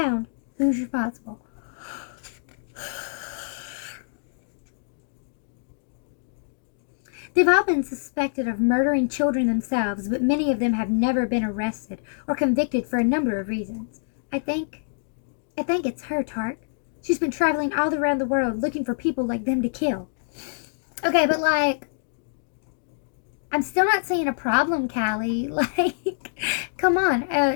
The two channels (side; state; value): right; silent; digital silence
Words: who's responsible. They've all been suspected of murdering children themselves, but many of them have never been arrested or convicted for a number of reasons. I think it's her, Tark. She's been traveling all around the world looking for people like them to kill. Okay, but like, I'm still not seeing a problem, Callie. Like, come